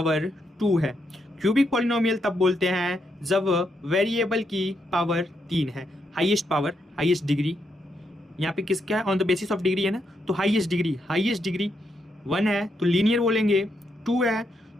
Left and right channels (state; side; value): normal; both; correlation 0.80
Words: 2 है। क्यूबिक पॉलिनोमियल तब बोलते हैं जब वेरिएबल की पावर 3 है। हाईएस्ट पावर, हाईएस्ट डिग्री यहाँ पे किसका है? On the basis of degree है ना, तो हाईएस्ट डिग्री 1 है तो लीनियर बोलेंगे, 2 है